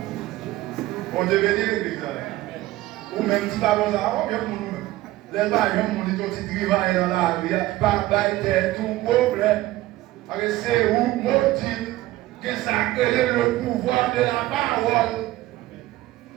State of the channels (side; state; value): left; quieter; 16.8 dB